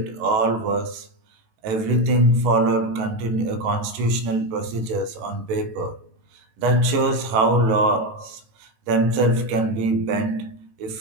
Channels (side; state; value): left; late; 18 ms